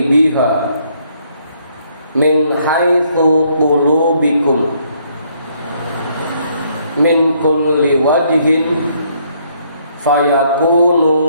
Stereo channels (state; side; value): inverted; both; correlation -0.69